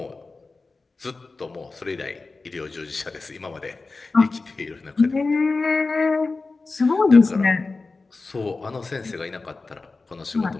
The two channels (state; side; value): quieter; right; 3.8 dB